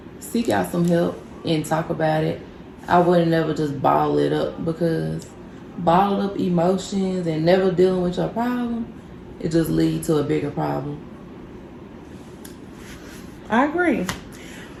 seek out some help and talk about it. I wouldn't never just bottle it up, because bottled up emotions and never dealing with your problem, it just leads to a bigger problem. I agree,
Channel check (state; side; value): identical; both; correlation 1.00